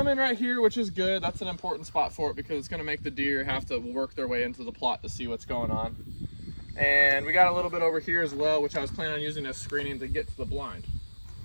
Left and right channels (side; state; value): both; inverted; correlation -1.00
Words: right here, which is good. That's an important spot for it because it's gonna make the deer have to work their way into the plot to see what's going on. And we got a little bit over here as well, which I was planning on using as screening to get to the blind.